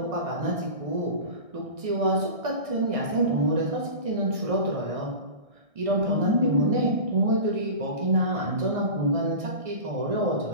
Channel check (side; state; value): left; late; 1.6 ms